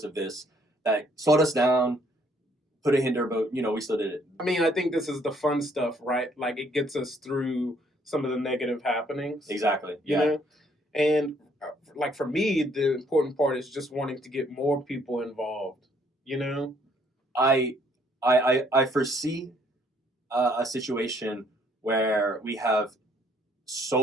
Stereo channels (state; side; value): normal; both; correlation 0.66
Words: of this that slowed us down, put a hinder, but we still did it. I mean, I think this is the fun stuff, right? Like, it gets us through some of the negative happenings. Exactly. And like, for me, the important part is just wanting to get more people involved. I foresee a situation where we have